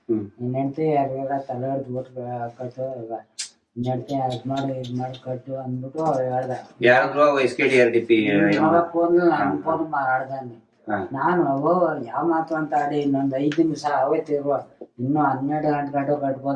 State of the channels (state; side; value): identical; both; correlation 1.00